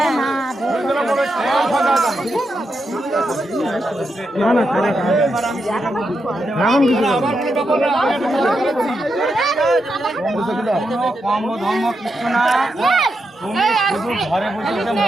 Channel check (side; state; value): both; normal; correlation 0.85